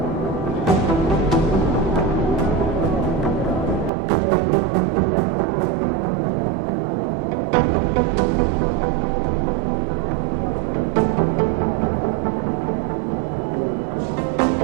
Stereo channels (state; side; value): drops out; left; at 3.9 s